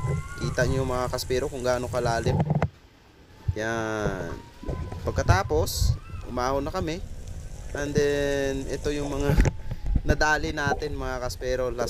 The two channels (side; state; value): both; identical; correlation 1.00